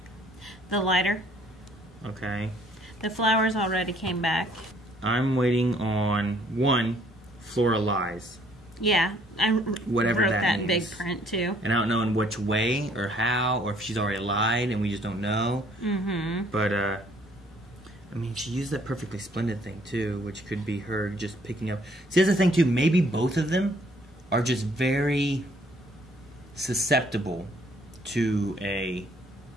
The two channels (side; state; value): both; normal; correlation 0.62